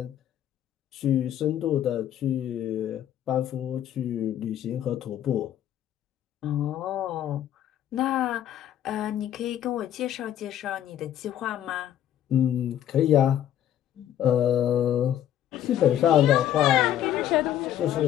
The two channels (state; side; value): quieter; right; 11.2 dB